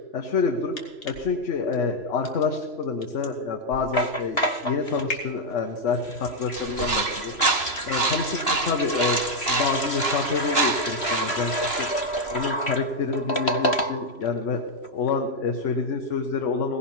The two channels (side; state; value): right; late; 3.1 ms